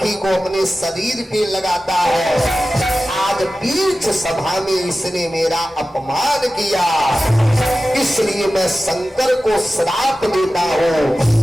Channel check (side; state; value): both; normal; correlation 0.95